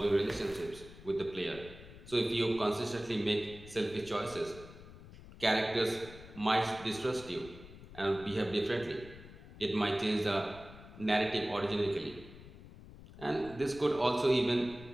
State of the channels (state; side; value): noise; left; rumble, 17 dB below the sound